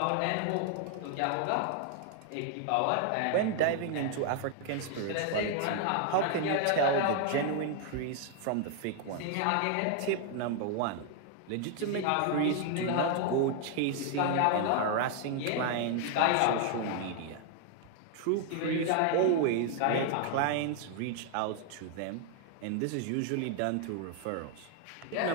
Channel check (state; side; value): different; both; correlation 0.00